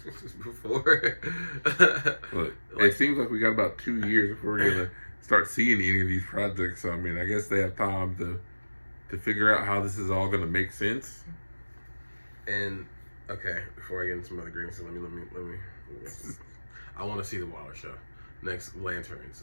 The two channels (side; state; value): both; inverted; correlation -1.00